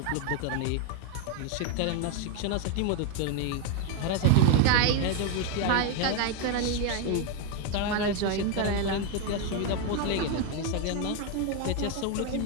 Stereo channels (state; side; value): different; both; correlation 0.01